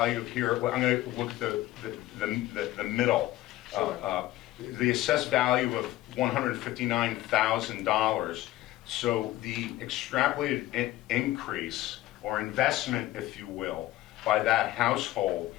here, well, I'm going to look at the middle. Sure. The assessed value of $159,000. So the extrapolated increase or investment, if you will, by that household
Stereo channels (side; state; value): right; quieter; 16.1 dB